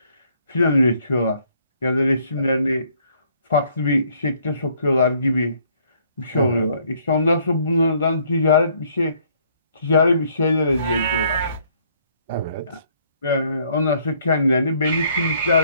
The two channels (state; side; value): inverted; both; correlation -0.65